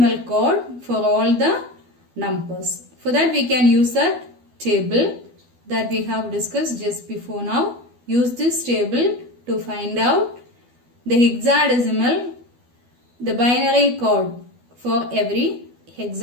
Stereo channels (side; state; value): left; late; 12 ms